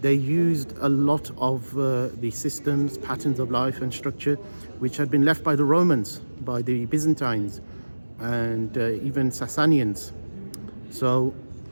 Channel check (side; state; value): both; inverted; correlation -1.00